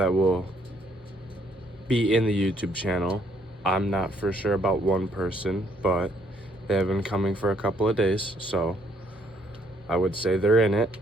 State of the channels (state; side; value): normal; both; correlation 0.68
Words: will be in the YouTube channel, I'm not for sure about one person, but they have been coming for a couple of days, so I would say they're in it.